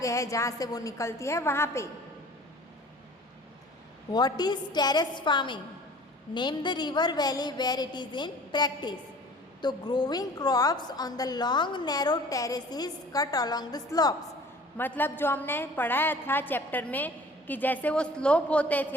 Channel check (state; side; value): normal; both; correlation 0.47